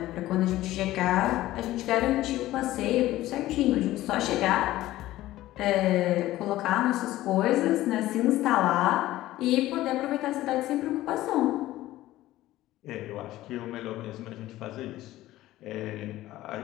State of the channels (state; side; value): quieter; right; 15.7 dB